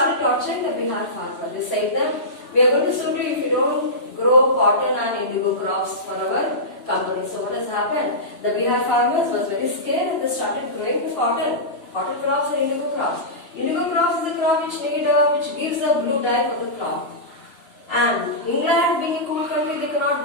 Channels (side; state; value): right; late; 3.0 ms